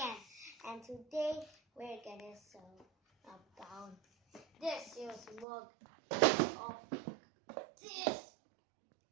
And today we're gonna sew about this is mug of this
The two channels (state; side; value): drops out; left; at 5.5 s